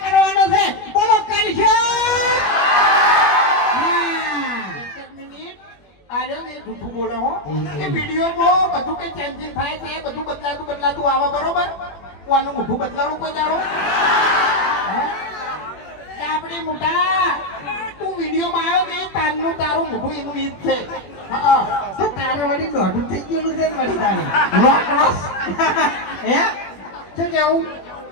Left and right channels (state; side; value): late; right; 21 ms